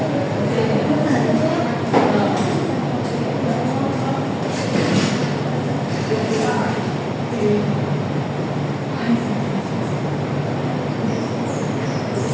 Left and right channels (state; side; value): identical; both; correlation 1.00